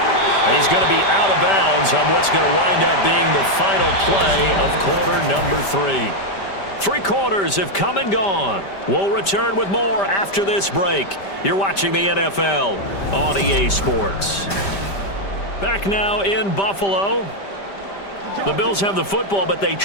He's going to be out of bounds on what's going to wind up being the final play of quarter number 3. 3 quarters have come and gone. We'll return with more after this break. You're watching the NFL on EA Sports. Back now in Buffalo. The Bills have the football, but they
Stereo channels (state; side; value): late; right; 5.1 ms